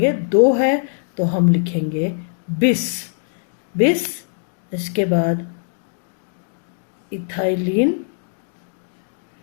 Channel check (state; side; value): silent; right; digital silence